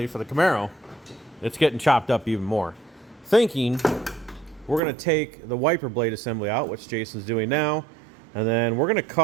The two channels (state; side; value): drops out; left; at 4.8 s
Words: for the Camaro, it's getting chopped up even more. Thinking we're going to take the wiper blade assembly out, which Jason's doing now, and then we're going to